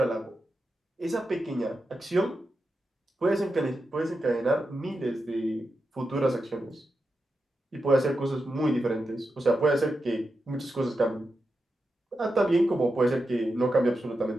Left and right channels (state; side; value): normal; both; correlation 0.89